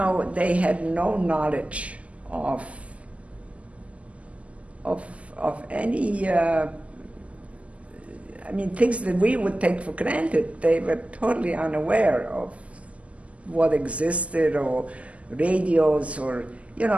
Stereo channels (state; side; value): late; left; 0.066 ms